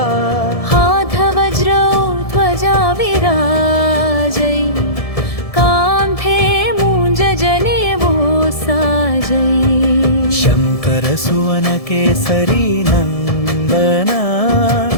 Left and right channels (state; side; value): late; right; 1.7 ms